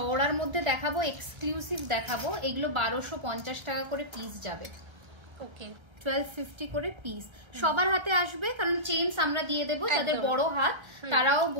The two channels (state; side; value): late; left; 1.3 ms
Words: মধ্যে দেখাবো, এক্সক্লুসিভ দেখাবো। এগুলো 1250 টাকা করে পিস যাবে। ওকে 1250 করে পিস সবার হাতে আসবে, কারণ চেইনস আমরা দিয়ে দেবো। যাদের বড় হাত তারাও